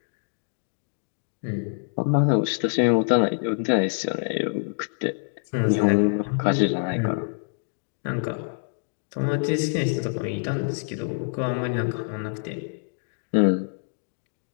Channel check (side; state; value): right; silent; digital silence